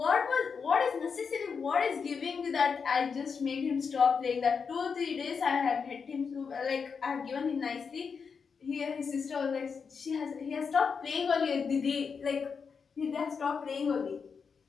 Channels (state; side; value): quieter; right; 5.8 dB